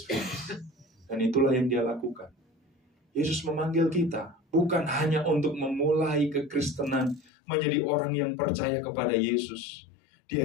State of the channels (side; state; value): right; drops out; at 7.2 s